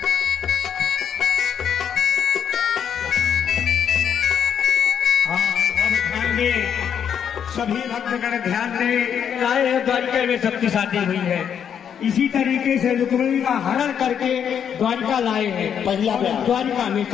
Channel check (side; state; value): right; quieter; 8.3 dB